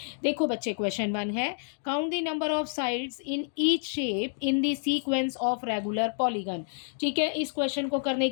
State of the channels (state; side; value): silent; right; digital silence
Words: देखो बच्चे, क्वेश्चन 1 है, count the number of sides in each shape in the sequence of regular polygon. ठीक है, इस क्वेश्चन को करने